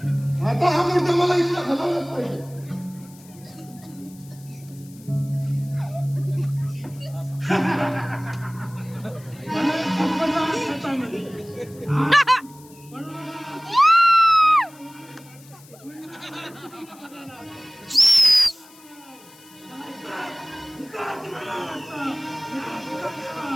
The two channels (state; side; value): noise; left; hiss, 24 dB below the sound